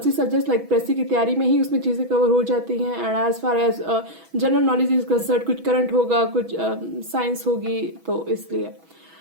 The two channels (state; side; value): late; left; 6.1 ms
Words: subjects like precis की तैयारी में ही उसमें चीजें कवर हो जाती हैं. And as far as general knowledge is concerned, कुछ करंट होगा, कुछ साइंस होगी, तो इसलिए